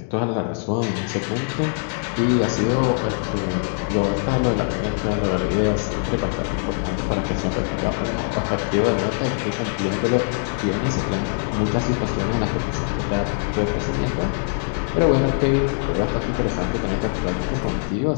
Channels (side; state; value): right; silent; 56 dB below the other